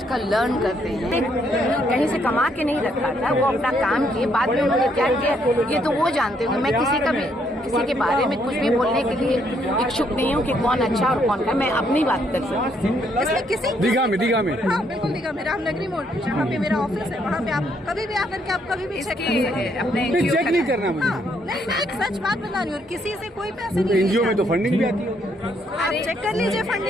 का लर्न करते हैं। कहीं से कमा के नहीं रखा था, वो अपना काम किए, बाद में उन्होंने क्या किया ये तो वो जानते होंगे। मैं किसी के बारे में कुछ भी बोलने के लिए इच्छुक नहीं हूँ कि कौन अच्छा और कौन का, मैं अपनी बात कर सकती हूँ। इसमें किसी दीघा में हाँ बिल्कुल दीघा में रामनगरी मोड़ जहाँ पे मेरा ऑफिस है, वहाँ पे आप कभी भी आकर के आप कभी भी चेक अपने चेक नहीं करना मुझे। नहीं, मैं एक सच बात बता रही हूँ, किसी से कोई पैसे नहीं। एनजीओ में तो फंडिंग भी आती है, आप चेक कर लीजिए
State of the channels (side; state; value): both; normal; correlation 0.71